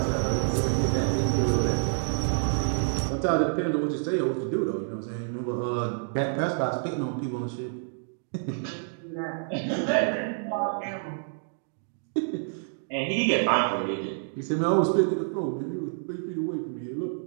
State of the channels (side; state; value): left; silent; digital silence